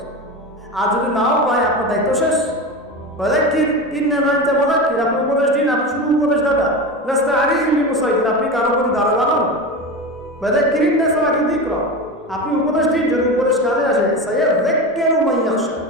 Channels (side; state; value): both; normal; correlation 0.24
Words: আর যদি নাও পায়, আপনার দায়িত্ব শেষ। আপনি উপদেশ দিন, আপনি শুধু উপদেশ দাদা, আপনি কারো প্রতি দারোগা নন। আপনি উপদেশ দিন, যদি উপদেশ কাজে আসে,